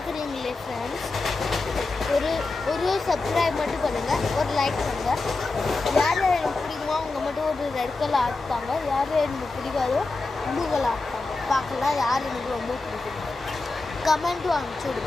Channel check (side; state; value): right; quieter; 3.5 dB